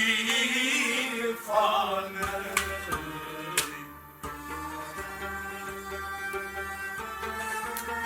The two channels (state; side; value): identical; both; correlation 1.00